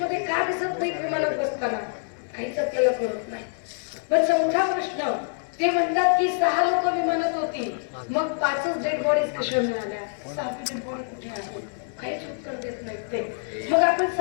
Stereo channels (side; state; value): right; silent; digital silence